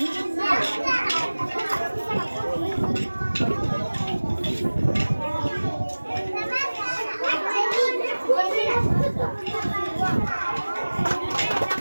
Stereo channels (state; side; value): inverted; both; correlation -1.00